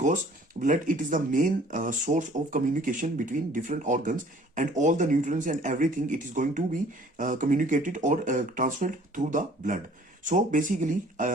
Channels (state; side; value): normal; both; correlation 0.54